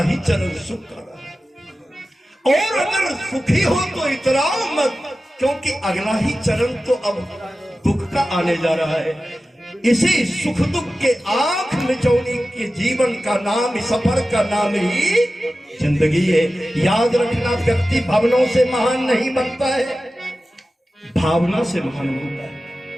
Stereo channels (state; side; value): normal; both; correlation 0.94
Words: ही चरण सुख का रहा है। और अगर सुखी हो तो इतराओ मत, क्योंकि अगला ही चरण तो अब दुख का आने जा रहा है। इसी सुख दुख के आंख मिचौनी के जीवन का नाम, सफर का नाम ही जिंदगी है। याद रखना, व्यक्ति भावनाओं से महान नहीं बनता है, भावना से महान बनता है।